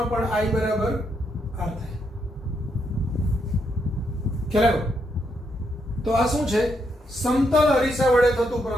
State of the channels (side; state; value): both; normal; correlation 0.78